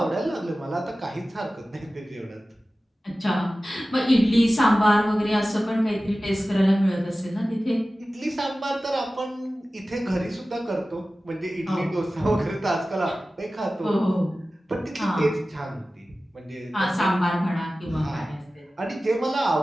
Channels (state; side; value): normal; both; correlation 0.96